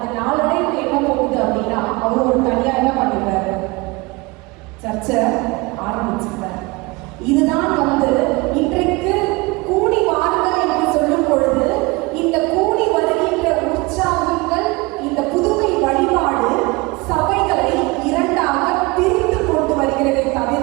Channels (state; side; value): quieter; left; 24.6 dB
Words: நாளடைவில் என்ன போகுது அப்படின்னா அவர் ஒரு தனியாக என்ன பண்ணிடுறாரு, சர்ச்சை ஆரம்பிச்சிருக்காரு. இதுதான் வந்து இன்றைக்கு கூடி வாருங்கள் என்று சொல்லும் பொழுது இந்த கூடி வருகின்ற உற்சாகங்கள், இந்த புதுமை வழிபாடு சபைகளை இரண்டாக பிரித்து கொண்டு வருகிறதை